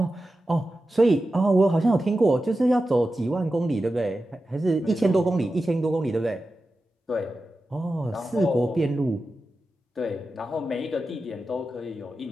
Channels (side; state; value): both; normal; correlation 0.92